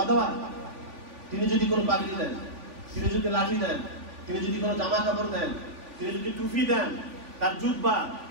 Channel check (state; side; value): late; left; 3.5 ms